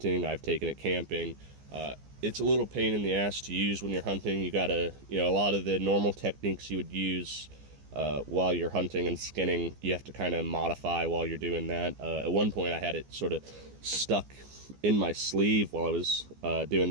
I've taken it camping. It's a little pain in the ass to use when you're hunting. You gotta, a lot of the normal techniques you would use while you're hunting and skinning, you have to kind of modify while you're doing that. At one point, I had it sort of stuck in my sleeve while I was doing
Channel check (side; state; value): left; late; 14 ms